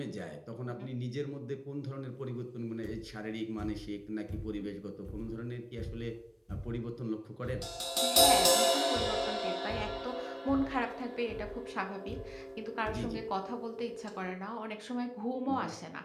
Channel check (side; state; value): both; identical; correlation 1.00